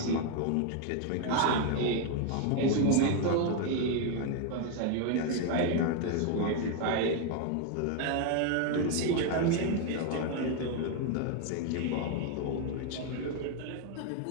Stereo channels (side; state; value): both; different; correlation 0.01